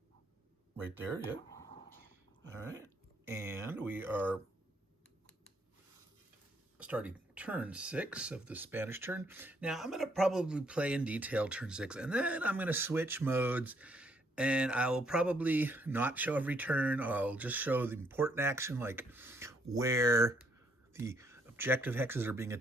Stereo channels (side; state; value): both; normal; correlation 0.69